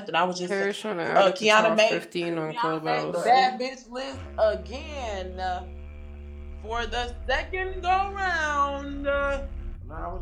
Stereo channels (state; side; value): identical; both; correlation 1.00